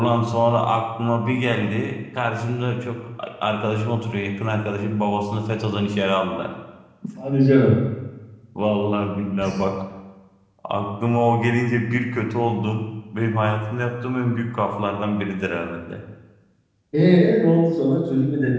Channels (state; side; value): identical; both; correlation 1.00